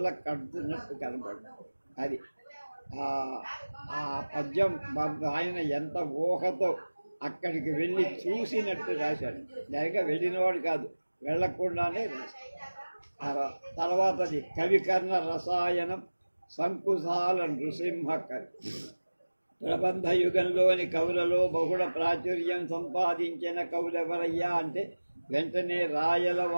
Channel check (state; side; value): inverted; both; correlation -1.00